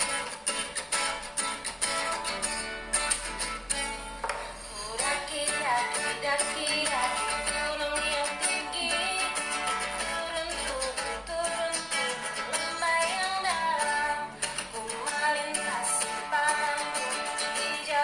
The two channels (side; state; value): both; identical; correlation 1.00